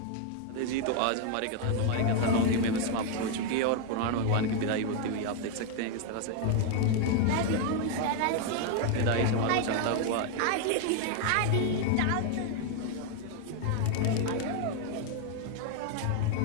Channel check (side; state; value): both; different; correlation 0.01